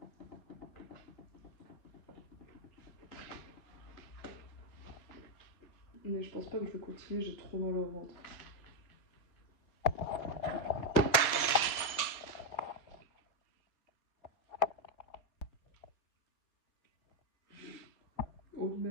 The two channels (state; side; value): late; right; 4.6 ms